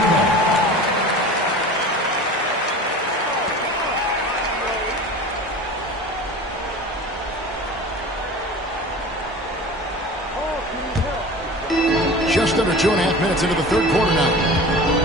Just under 2.5 minutes into the third quarter now.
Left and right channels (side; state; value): both; normal; correlation 0.36